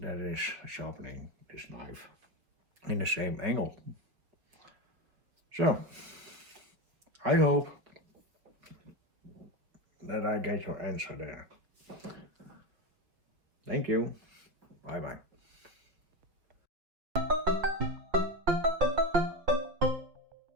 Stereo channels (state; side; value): late; left; 5.4 ms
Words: is sharpening this knife in the same angle. So I hope that I get your answer there. Thank you. Bye bye.